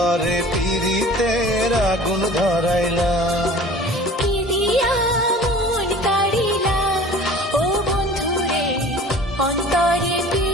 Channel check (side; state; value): both; normal; correlation 0.44